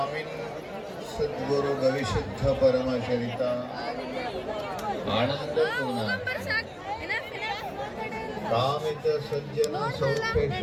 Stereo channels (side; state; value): both; identical; correlation 1.00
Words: सद्गुरु गविशुद्ध परमचरित आनंद कामित सज्जन सौख्य